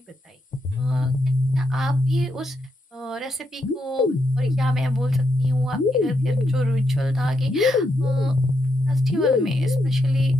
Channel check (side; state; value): both; normal; correlation 0.81